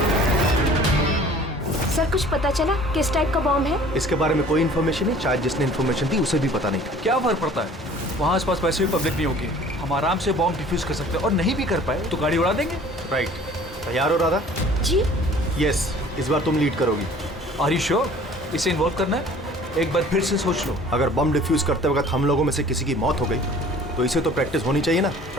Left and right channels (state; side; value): normal; both; correlation 0.49